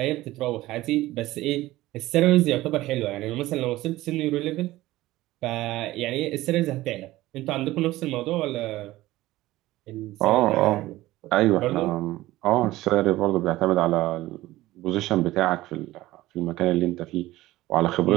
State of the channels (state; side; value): quieter; left; 17.0 dB